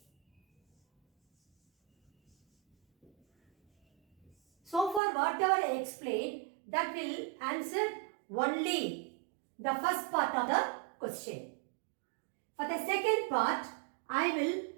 So far whatever I explained, that will answer only the first part of the question. For the second part, I will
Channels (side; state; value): left; drops out; at 5.0 s